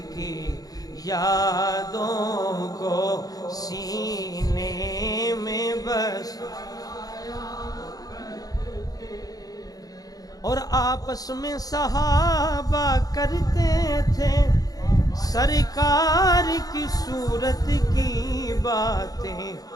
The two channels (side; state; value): right; late; 0.18 ms